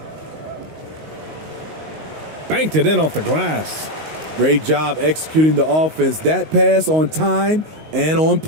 Banked it in off the glass. Great job executing the offense. That pass on time and on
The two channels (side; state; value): left; late; 19 ms